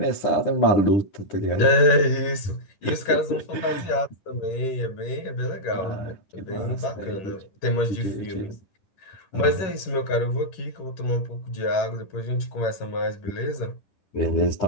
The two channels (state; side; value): late; right; 11 ms